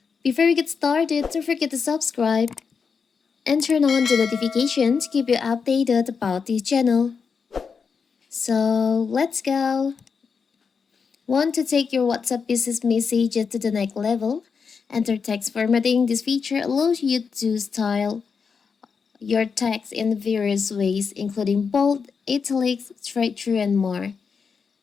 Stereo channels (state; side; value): quieter; right; 5.7 dB